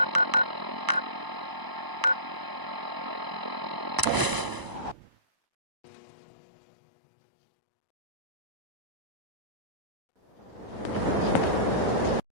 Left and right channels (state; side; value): late; left; 1.0 ms